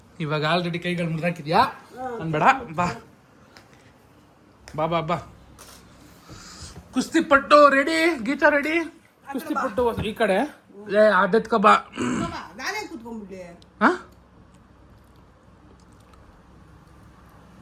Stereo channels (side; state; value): both; identical; correlation 1.00